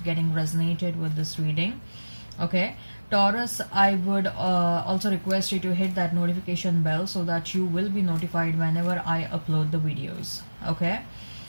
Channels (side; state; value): both; inverted; correlation -1.00